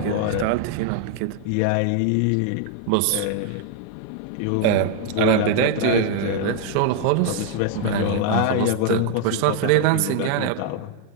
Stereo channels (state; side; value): different; both; correlation 0.00